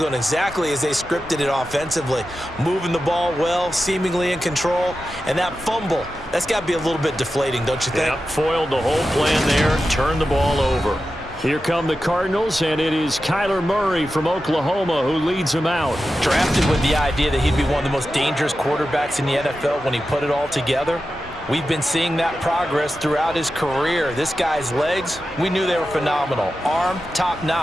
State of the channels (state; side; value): normal; both; correlation 0.92